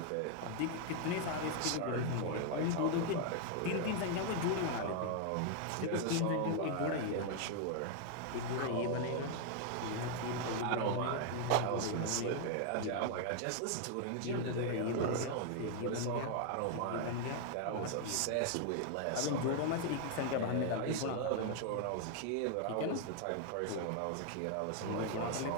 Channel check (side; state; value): both; different; correlation 0.00